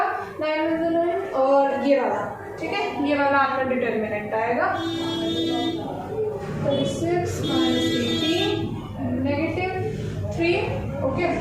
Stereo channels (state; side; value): identical; both; correlation 1.00